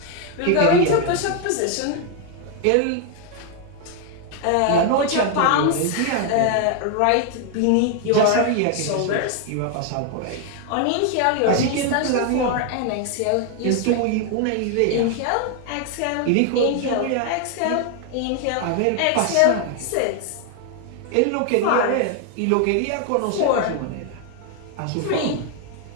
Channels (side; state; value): both; different; correlation 0.00